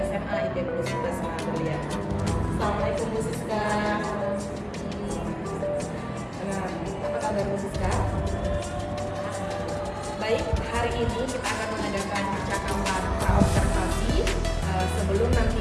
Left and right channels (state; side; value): identical; both; correlation 1.00